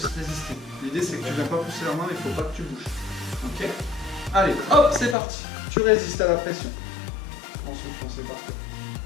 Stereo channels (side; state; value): right; drops out; at 5.2 s